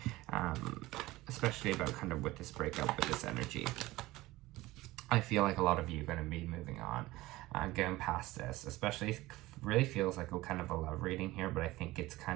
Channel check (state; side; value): quieter; left; 18.7 dB